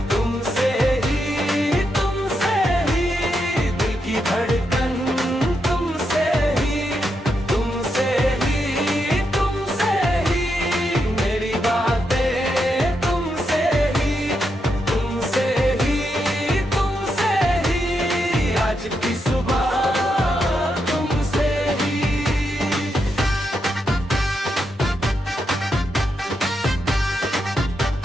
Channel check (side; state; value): both; normal; correlation 0.83